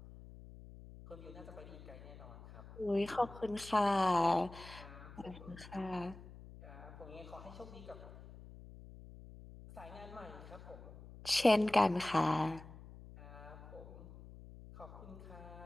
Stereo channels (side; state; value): left; noise; hum, 16 dB below the sound